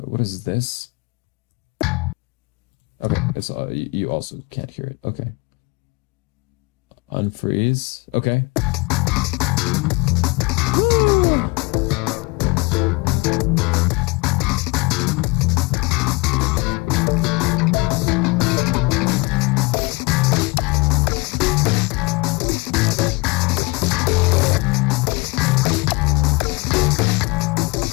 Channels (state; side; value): quieter; right; 25.8 dB